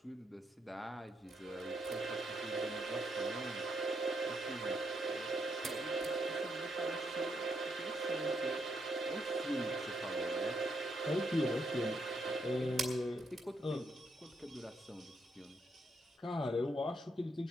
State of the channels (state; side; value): normal; both; correlation 0.78